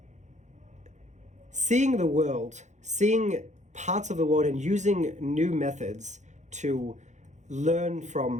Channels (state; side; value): late; left; 0.34 ms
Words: seeing the world, seeing parts of the world, and using new methods to learn